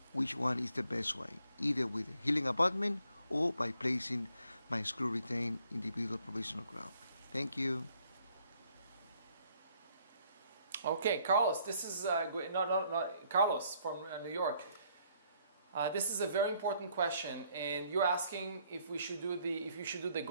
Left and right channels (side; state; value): both; inverted; correlation -0.67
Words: which one is the best way, either with a healing abutment or by placing my screw retained individual provisional crown. Thank you. Okay, Carlos, this is Carlos from New York. This is a very important question, and you're asking if you should do the